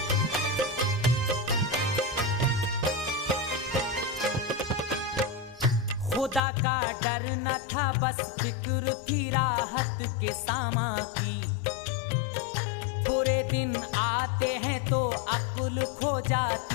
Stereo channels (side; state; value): right; drops out; at 6.4 s